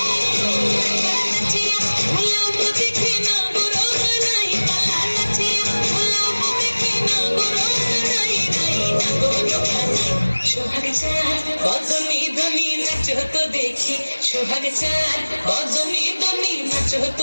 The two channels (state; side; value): inverted; both; correlation -1.00